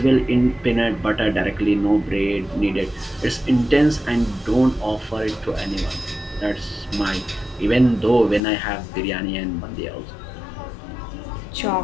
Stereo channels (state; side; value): drops out; right; at 8.4 s